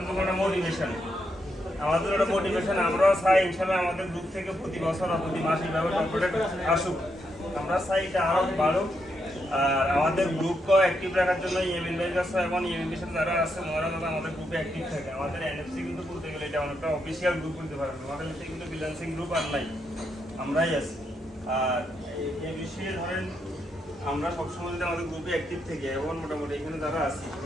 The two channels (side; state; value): both; normal; correlation 0.81